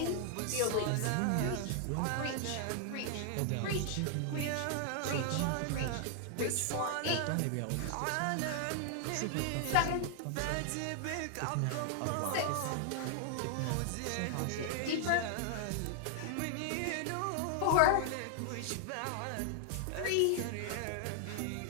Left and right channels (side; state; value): both; different; correlation 0.00